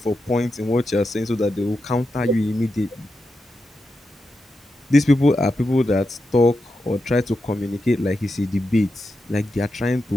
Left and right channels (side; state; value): both; normal; correlation 0.88